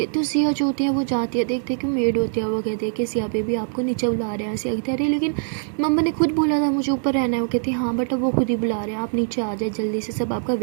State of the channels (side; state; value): left; silent; digital silence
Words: तो सिया जो होती है वो जाती है, देखते कि मेड होती है, वो कहती है कि सिया बेबी आपको नीचे बुला रहे हैं। सिया कहती है अरे लेकिन मम्मा ने खुद बोला था मुझे ऊपर रहना है। वो कहती हाँ बट अब वो खुद ही बुला रहे हैं, आप नीचे आ जाए जल्दी से, सब आपका